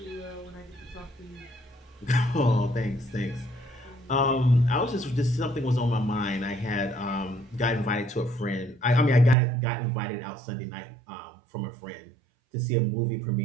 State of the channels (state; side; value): drops out; left; at 9.3 s